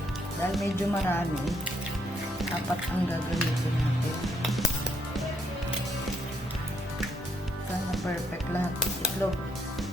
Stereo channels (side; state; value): both; normal; correlation 0.72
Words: Dahil medyo marami, 4 ang gagamitin natin. Sana perfect lahat. Itlog.